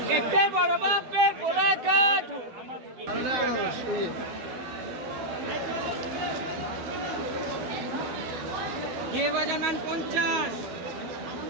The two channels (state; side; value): late; left; 12 ms